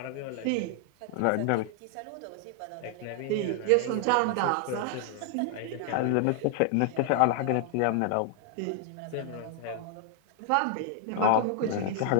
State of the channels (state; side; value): different; both; correlation 0.00